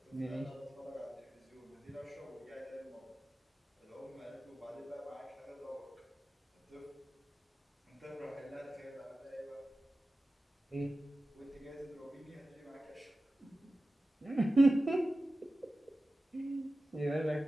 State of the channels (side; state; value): both; normal; correlation 0.95